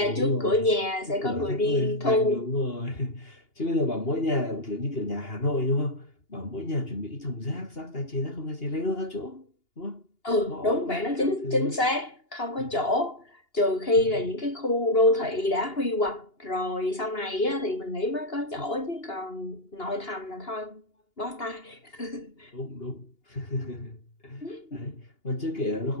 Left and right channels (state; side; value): late; right; 2.8 ms